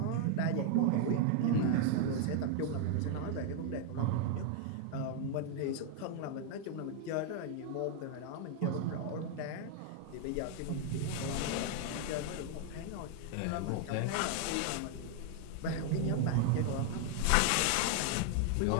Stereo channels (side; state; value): both; different; correlation 0.00